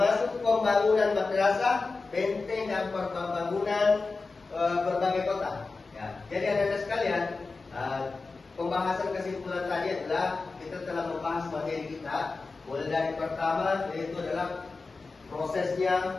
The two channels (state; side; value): quieter; right; 4.0 dB